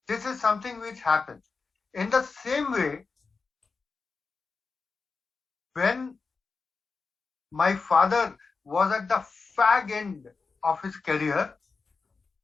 This is something which happens. In the same way, when my father was at the fag end of his career,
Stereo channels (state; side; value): quieter; right; 4.5 dB